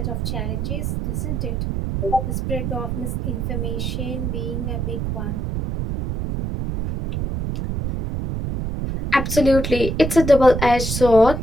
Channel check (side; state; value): right; noise; rumble, 2 dB below the sound